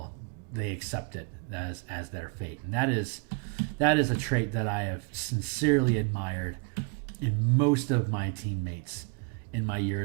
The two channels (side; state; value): left; quieter; 31.3 dB